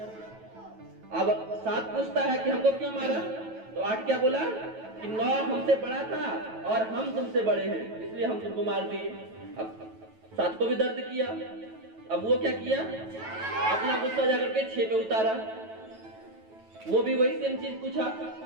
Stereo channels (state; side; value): late; left; 9.2 ms